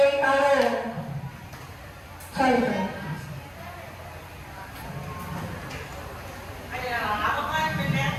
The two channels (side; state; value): both; identical; correlation 1.00